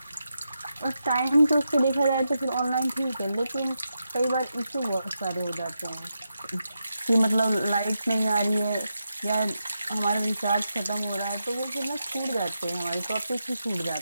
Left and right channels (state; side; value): inverted; both; correlation -0.87